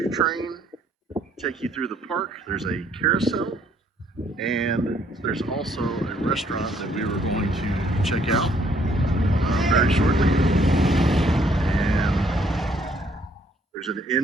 train. Take you through the park. There's a carousel. And there's also a restaurant that we were going to check out very shortly. And there's an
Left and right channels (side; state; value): both; normal; correlation 0.66